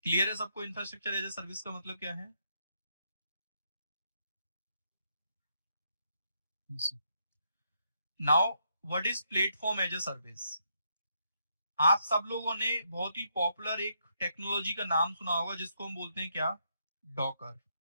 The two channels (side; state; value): both; inverted; correlation -0.77